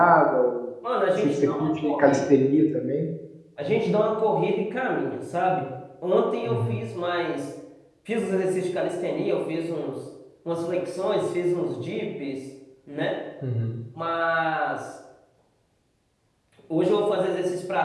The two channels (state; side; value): identical; both; correlation 1.00